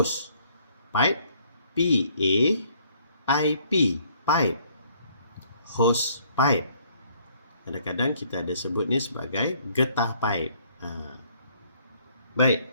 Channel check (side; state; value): both; inverted; correlation -0.63